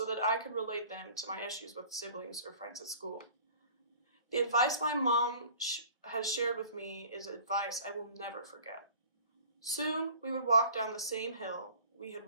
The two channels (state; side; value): inverted; both; correlation -0.47